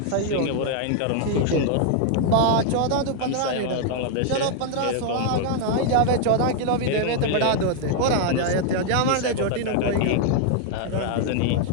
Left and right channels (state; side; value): different; both; correlation 0.00